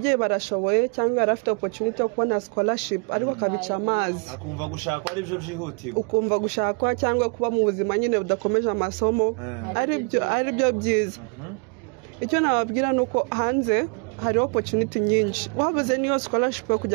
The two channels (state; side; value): quieter; left; 36.4 dB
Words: barashoboye cyangwa arafite opportunity yo kubona scholarship ariko akabica amazi akumva gushakwa ari byo byihutirwa ukumva gushakwa cyangwa kuba mu buzima nyine budakomeje amasomo ari byo byiza icyo nababwira nuko hanze hari opportunity nyinshi wabuze niyo scholarship yo